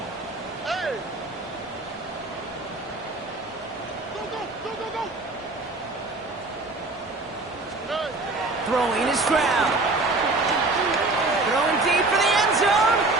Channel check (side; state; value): left; quieter; 3.1 dB